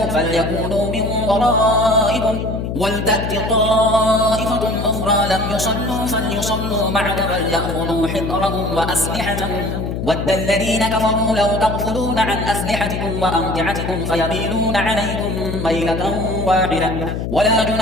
فليكونوا من ورائكم ولتأت طائفة أخرى لم يصلوا فليصلوا معك وليأخذوا حذرهم وأسلحتهم ود الذين كفروا لو تغفلون عن أسلحتكم وأمتعتكم فيميلون عليكم ميلة واحدة ولا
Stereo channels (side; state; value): left; noise; hum, 4 dB below the sound